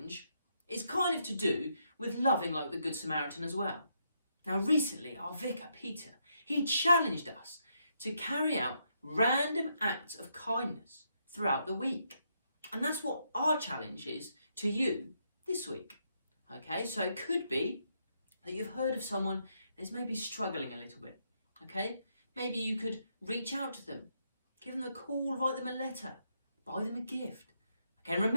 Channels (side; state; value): both; inverted; correlation -0.78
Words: is kind of to do with loving like the Good Samaritan as well. Now, recently, our vicar, Peter, he challenged us to carry out random acts of kindness throughout the week. And that's what our challenge is to you this week. Okay, so it could be that you've heard of someone that's maybe struggling a little bit. Okay, maybe you could reach out to them, give them a call, write them a letter, buy them a gift. Okay, and